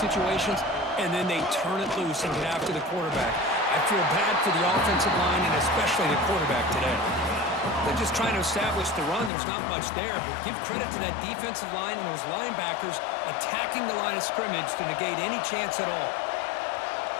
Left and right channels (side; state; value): right; drops out; at 9.3 s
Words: and then they turn it loose and get after the quarterback. I feel bad for the offensive line and especially the quarterback today. They're just trying to establish the run. There's not much there, but give credit to that defensive line and those linebackers attacking the line of scrimmage to negate any chance at all.